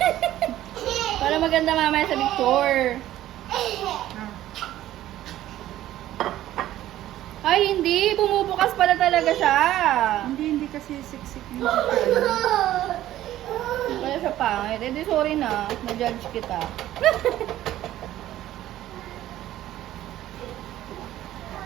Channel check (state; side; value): quieter; left; 13.7 dB